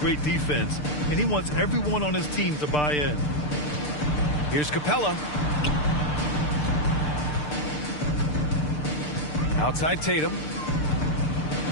defense, and he wants everyone on his team to buy in. Here's Capella. Outside Tatum.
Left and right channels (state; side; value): late; right; 6.7 ms